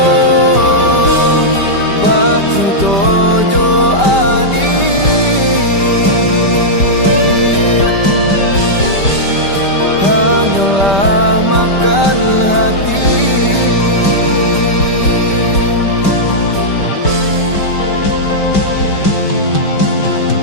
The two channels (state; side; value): late; right; 5.1 ms